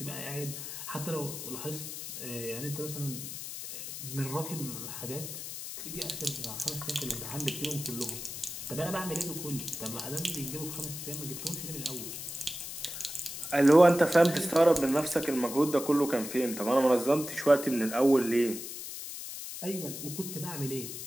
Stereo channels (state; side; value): noise; left; hiss, 8 dB below the sound